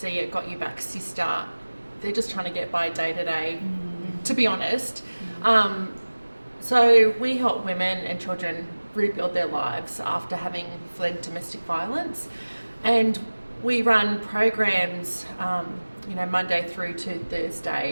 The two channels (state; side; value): inverted; both; correlation -1.00